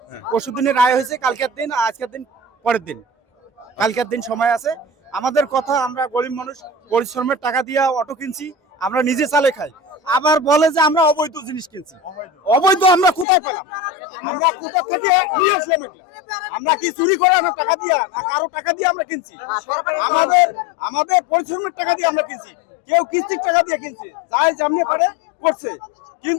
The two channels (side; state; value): right; drops out; at 13.2 s